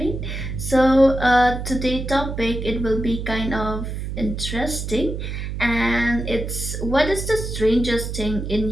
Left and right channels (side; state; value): right; noise; hum, 5 dB below the sound